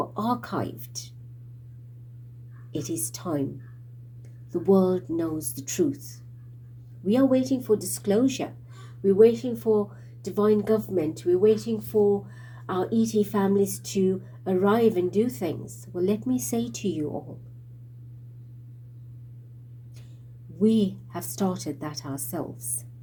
archived. It is time. The world knows the truth. We are waiting for disclosure. We're waiting for divine government. We're waiting for our ET families to arrive and do things. Well, let me say to you all, we have started that ourselves.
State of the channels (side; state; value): both; identical; correlation 1.00